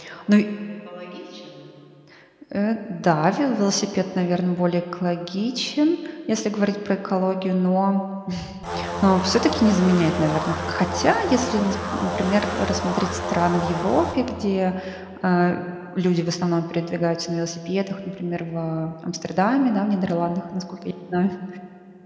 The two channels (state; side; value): identical; both; correlation 1.00